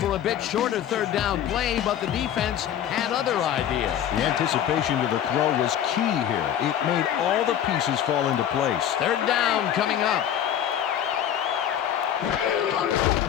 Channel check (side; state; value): right; quieter; 10.1 dB